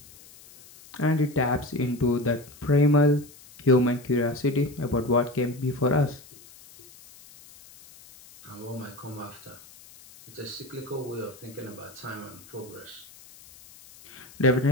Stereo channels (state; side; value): noise; left; hiss, 22 dB below the sound